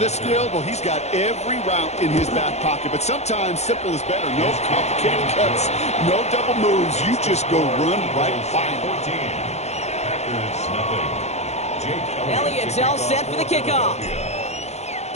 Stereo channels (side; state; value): right; late; 0.32 ms